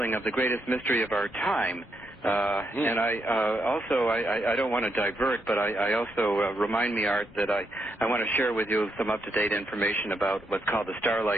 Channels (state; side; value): normal; both; correlation 0.79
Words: of the greatest mystery of our time. And I don't want to divert, but I also remind me, Art, that I want to share with you some up-to-date information about what's called the